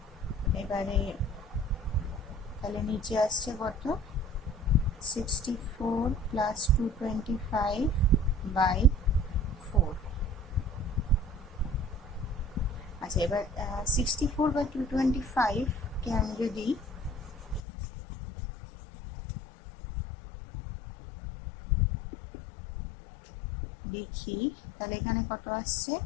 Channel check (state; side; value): drops out; right; at 17.6 s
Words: এবারে তাহলে নিচে আসছে কত, 64 প্লাস 225/4। আচ্ছা, এবার 64/225কে আমি যদি দেখি, তাহলে এখানে কত আসছে,